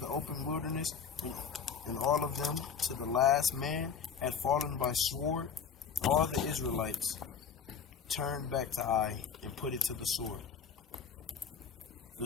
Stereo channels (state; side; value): quieter; right; 6.6 dB